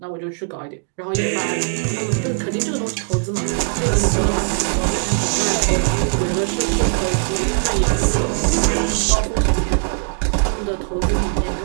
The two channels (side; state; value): left; silent; digital silence